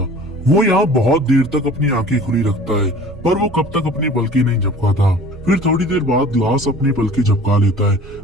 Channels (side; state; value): both; normal; correlation 0.45